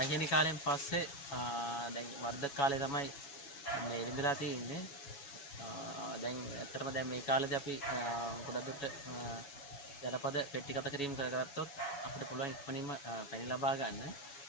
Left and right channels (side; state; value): right; late; 7.1 ms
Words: කාලෙන් පස්සේ දැන් වර්ධක කාලේ තමයි මේ ඉඳලා තියෙන්නේ. දැන් ඇත්තටම දැන් මේ කාලේදී අපි ගොඩක් දුරට ජනපද පෙට්ටිගත කිරීම කරගත්තොත් අපිට පුළුවන් ඉක්මනින්ම පැණි ලබා ගන්න.